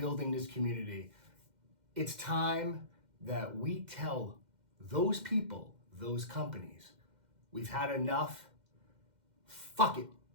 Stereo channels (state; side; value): late; left; 2.1 ms